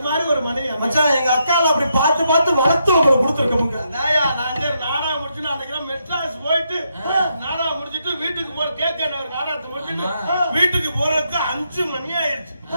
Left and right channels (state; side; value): inverted; both; correlation -0.80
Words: மாதிரி ஒரு மனைவி மச்சான். எங்க அக்கால அப்படி பார்த்து வளர்த்து உங்களுக்கு கொடுத்துருக்கோங்க. நான் நாடகம் முடிச்சுட்டு அன்னைக்கு மெட்ராஸ் போயிட்டு நாடகம் முடிச்சுட்டு வீட்டுக்கு போற கேட்க நாடகத்தை முடிச்சுட்டு வீட்டுக்கு போறதுக்கு 5 மணி ஆயிடுச்சு.